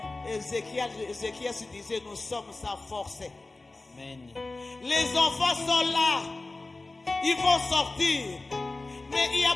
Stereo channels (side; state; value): right; quieter; 3.2 dB